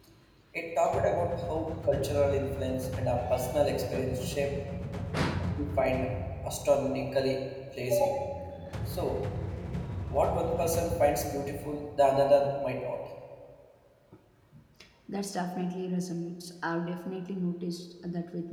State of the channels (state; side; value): identical; both; correlation 1.00